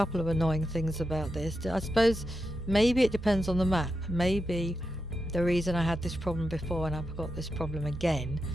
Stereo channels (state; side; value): normal; both; correlation 0.88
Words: of annoying things about this. I suppose maybe it depends on the map. Maybe the reason I had this problem before and I've got this problem again